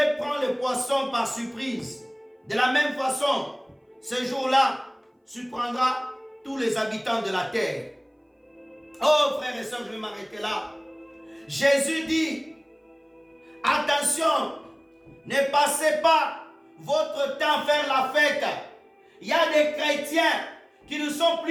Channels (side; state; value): both; identical; correlation 1.00